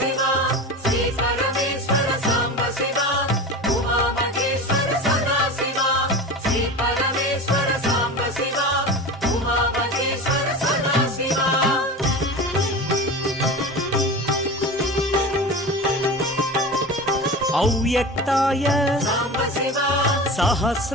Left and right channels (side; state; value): both; normal; correlation 0.30